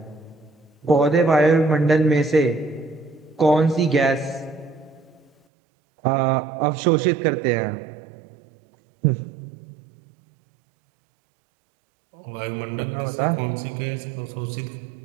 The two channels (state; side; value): drops out; left; at 5.3 s